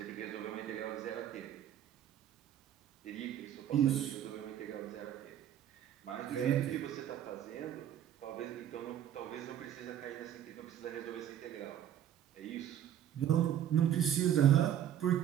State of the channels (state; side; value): quieter; left; 10.6 dB